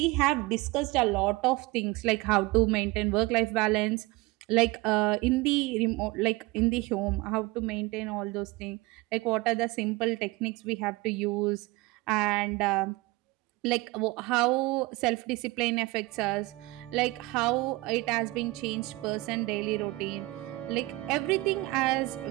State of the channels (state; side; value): quieter; left; 21.6 dB